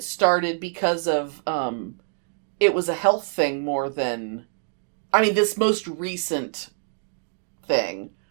started because of, it was a health thing more than, this most recent thing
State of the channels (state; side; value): silent; left; 62 dB below the other